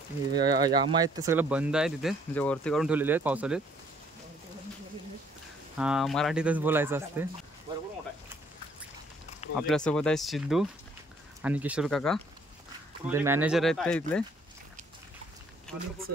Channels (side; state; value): both; normal; correlation 0.62